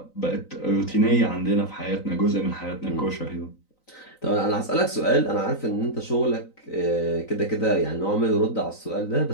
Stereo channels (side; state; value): right; late; 3.9 ms